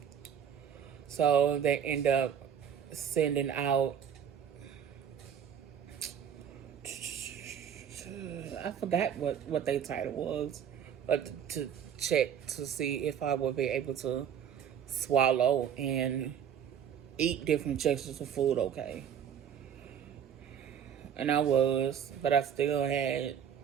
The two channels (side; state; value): left; quieter; 8.6 dB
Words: So they end up sending out, I forgot what their title was, but to check to see if I would be able to swallow and eat different textures of food okay. And I was, but I still